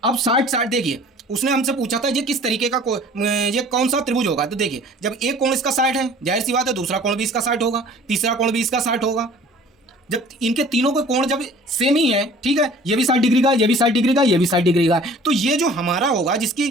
अब 60 देखिए उसने हमसे पूछा था ये किस तरीके का ये कौन सा त्रिभुज होगा। तो देखिए जब एक कोण इसका 60 है, जाहिर सी बात है दूसरा कोण भी इसका 60 होगा, तीसरा कोण भी इसका 60 होगा। जब इनके तीनों के कोण जब सेम ही है, ठीक है, ये भी 60 डिग्री का, ये भी 60 डिग्री का, ये भी 60 डिग्री का है, तो ये जो हमारा होगा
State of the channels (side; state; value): both; normal; correlation 0.49